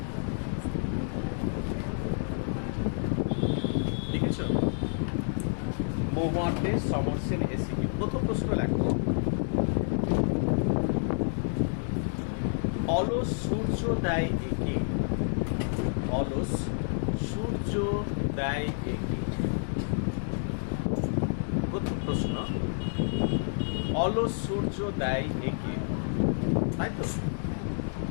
লিখেছ? মহুয়ার দেশ সমর সেন এসে কি। প্রথম প্রশ্ন লেখো, অলস সূর্য দেয় একে। অলস সূর্য দেয় একে। প্রথম প্রশ্ন, অলস সূর্য দেয় একে, তাই তো?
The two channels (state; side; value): silent; right; digital silence